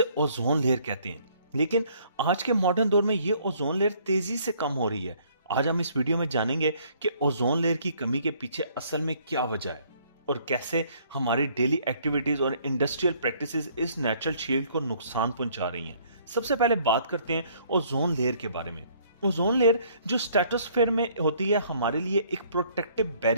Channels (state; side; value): inverted; both; correlation -0.62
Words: ओजोन लेयर कहते हैं। लेकिन आज के मॉडर्न दौर में ये ओजोन लेयर तेजी से कम हो रही है। आज हम इस वीडियो में जानेंगे कि ओजोन लेयर की कमी के पीछे असल में क्या वजह है और कैसे हमारी डेली एक्टिविटीज और इंडस्ट्रियल प्रैक्टिसेस इस नेचुरल शील्ड को नुकसान पहुंचा रही हैं। सबसे पहले बात करते हैं ओजोन लेयर के बारे में। ओजोन लेयर जो स्ट्रेटोस्फेयर में होती है, हमारे लिए एक प्रोटेक्टिव